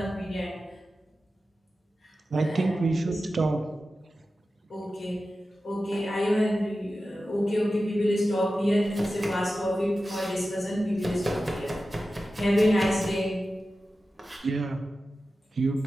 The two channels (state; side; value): normal; both; correlation 0.93